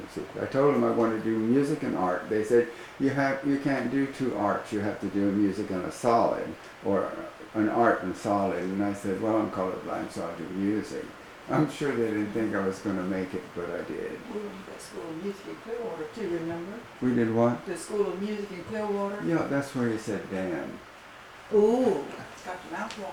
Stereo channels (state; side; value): identical; both; correlation 1.00